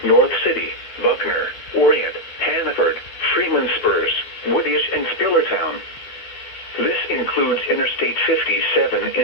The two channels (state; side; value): late; right; 12 ms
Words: North City, Buckner, Orient, Hannaford, Freeman Spurs, Woodyash, and Spillertown. This includes Interstate 57